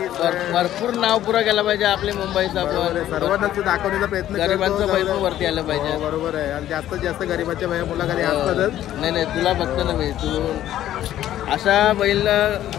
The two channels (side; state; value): right; quieter; 12.5 dB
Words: भरपूर नाव पुरा केला पाहिजे आपले मुंबईचा. पण सर्वांना दाखवण्याचा प्रयत्न. गरिबांचं पैसे वरती आलं पाहिजे. बरोबर आहे. आणि जास्तीत जास्त गरिबाच्या मुलाखती असतातच. नाही तुला बघतो ना मी. तू अशा बैल